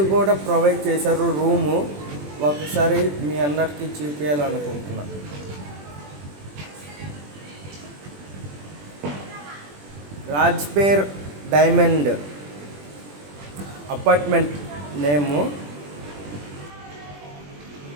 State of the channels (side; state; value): left; late; 21 ms